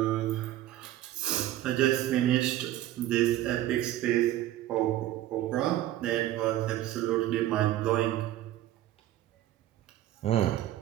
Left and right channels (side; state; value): left; quieter; 13.9 dB